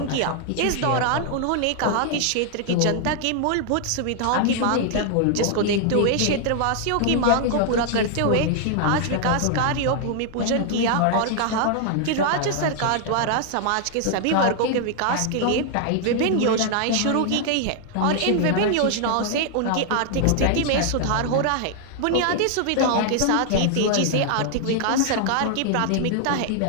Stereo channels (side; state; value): both; different; correlation 0.00